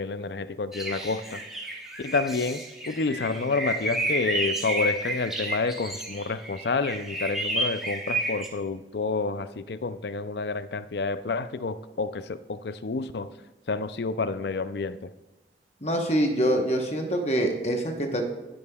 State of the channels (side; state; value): both; normal; correlation 0.22